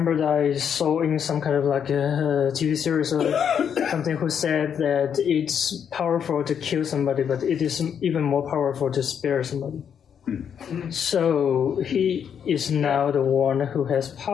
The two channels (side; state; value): right; quieter; 7.9 dB